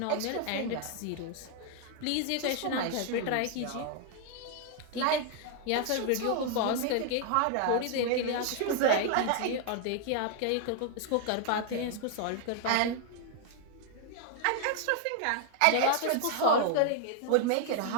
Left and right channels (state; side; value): different; both; correlation 0.00